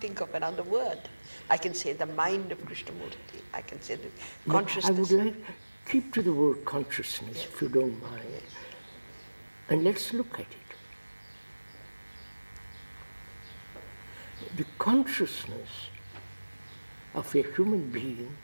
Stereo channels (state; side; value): inverted; both; correlation -1.00